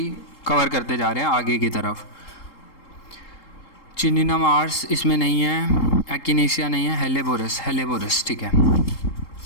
कवर करते जा रहे हैं आगे की तरफ। चिनिनम आर्स इसमें नहीं है, एक्टिनेशिया नहीं है, हेलेबोरस, ठीक है।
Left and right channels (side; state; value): right; late; 3.7 ms